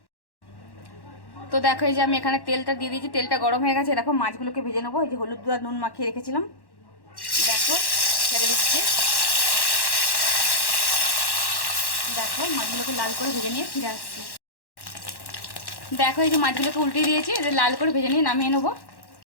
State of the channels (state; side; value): late; right; 1.1 ms